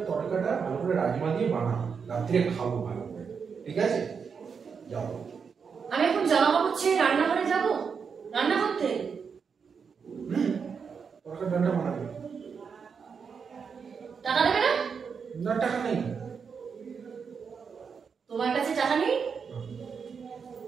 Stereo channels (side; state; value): left; quieter; 6.1 dB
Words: তরকাটা ভালো করে রাজমা দিয়ে বানাও, রাত্রে খাবো ভালো করে, ঠিক আছে? যাও। আমি এখন জামা কাপড় ছেড়ে রান্নাঘরে যাব, রান্না করতে। তরকার ডালটা বানাবে। টাকা দেবে না? না টাকা নেই। তোমার কাছে টাকা নেই?